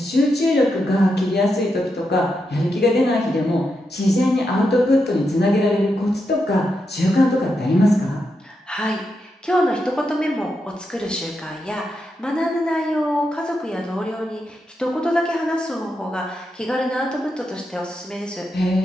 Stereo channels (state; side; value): normal; both; correlation 0.85